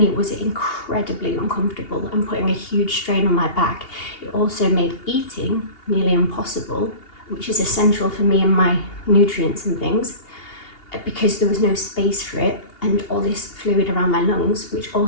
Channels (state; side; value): late; right; 2.8 ms